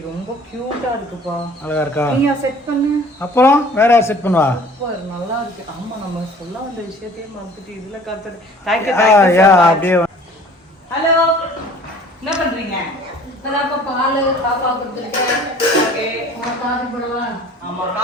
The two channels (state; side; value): normal; both; correlation 0.49